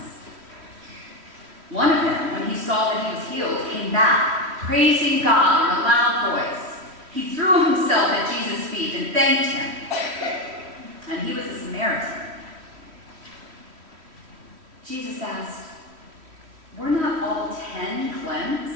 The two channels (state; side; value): late; left; 3.1 ms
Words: One of them, when he saw that he was healed, came back, praising God in a loud voice. He threw himself at Jesus' feet and thanked him. And he was a Samaritan. Jesus asked, "Were not all 10